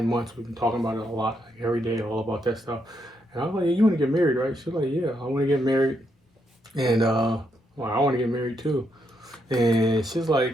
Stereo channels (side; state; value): both; normal; correlation 0.78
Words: months, we've been talking about it a lot, like every day, all about that stuff. And I was like, yeah, you want to get married, right? She's like, yeah, I want to get married. And well, I want to get married too. And she's